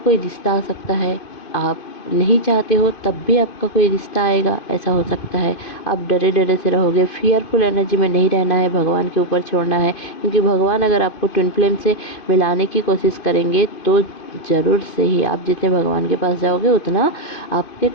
रिश्ता आ सकता है, आप नहीं चाहते हो तब भी आपका कोई रिश्ता आएगा, ऐसा हो सकता है। आप डरे डरे से रहोगे, फियरफुल एनर्जी में नहीं रहना है, भगवान के ऊपर छोड़ना है, क्योंकि भगवान अगर आपको ट्विन फ्लेम से मिलाने की कोशिश करेंगे तो ज़रूर से ही आप जितने भगवान के पास जाओगे उतना आपके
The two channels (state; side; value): late; right; 2.5 ms